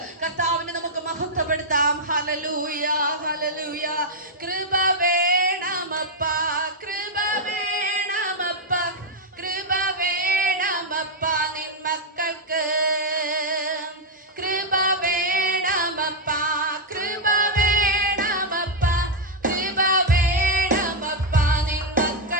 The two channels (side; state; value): both; normal; correlation -0.02